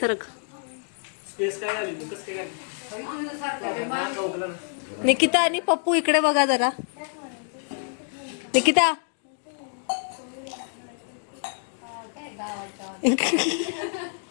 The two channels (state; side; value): silent; right; 60 dB below the other